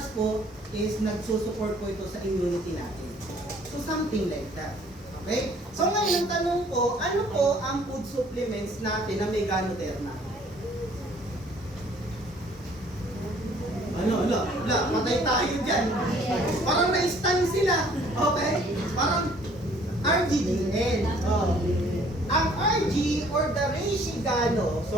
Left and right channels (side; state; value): both; normal; correlation 0.58